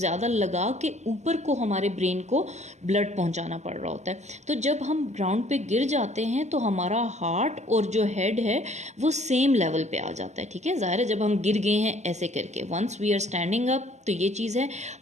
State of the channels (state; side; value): late; left; 0.33 ms